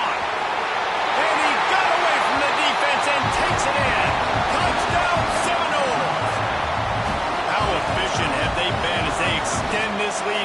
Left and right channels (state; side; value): identical; both; correlation 1.00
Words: And he got away from the defense and takes it in. Touchdown Seminoles. How efficient have they been as they extend this